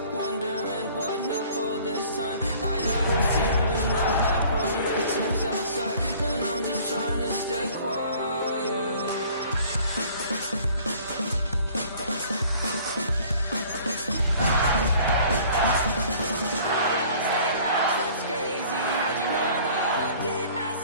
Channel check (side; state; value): both; inverted; correlation -0.52